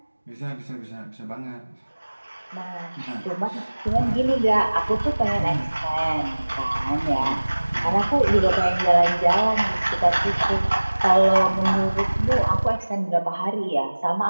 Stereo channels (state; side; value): inverted; both; correlation -1.00